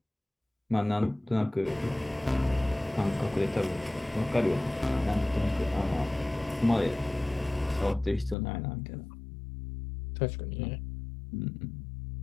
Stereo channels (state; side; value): drops out; right; at 8.3 s